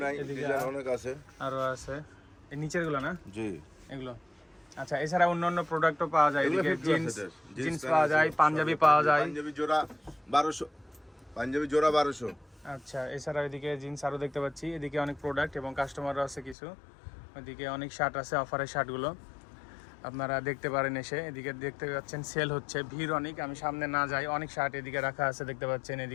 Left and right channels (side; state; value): right; drops out; at 16.6 s